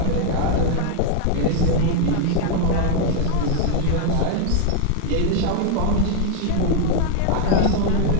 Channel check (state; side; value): different; both; correlation 0.00